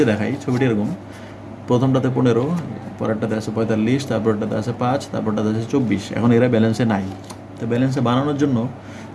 দেখাই, ছবিটি এরকম, প্রথমটাতে 15, পরেরটাতে আছে 45, তারপরটাতে আছে 5, তারপরটাতে আছে 24। এখন এরা ব্যালেন্সে নাই। তো ব্যালেন্সে বানানোর জন্য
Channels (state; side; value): identical; both; correlation 1.00